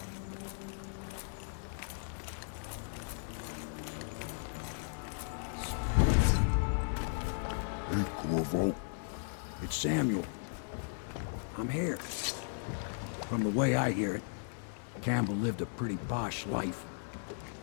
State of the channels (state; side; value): silent; right; digital silence